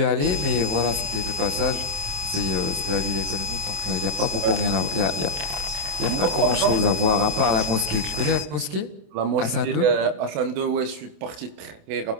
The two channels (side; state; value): left; late; 27 ms